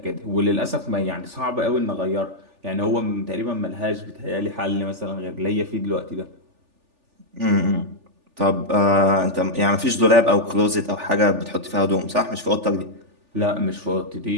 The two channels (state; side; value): late; left; 3.4 ms